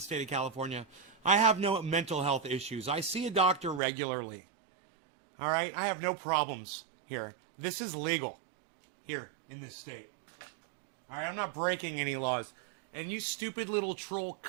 of California. I have no mental health issues. I see a doctor regularly. All right? I have no problems here. This is legal here in this state. All right? I'm not breaking any laws. And you stupid little troll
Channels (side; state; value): left; drops out; at 3.8 s